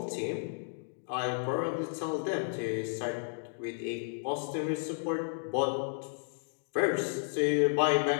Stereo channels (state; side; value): silent; right; digital silence